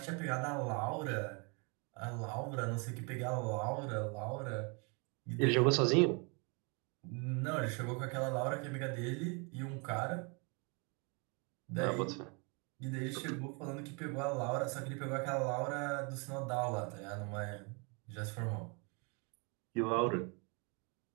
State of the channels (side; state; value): left; quieter; 33.3 dB